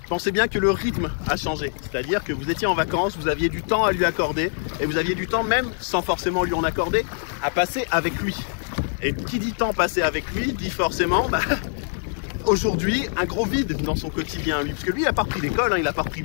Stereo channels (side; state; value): right; silent; 63 dB below the other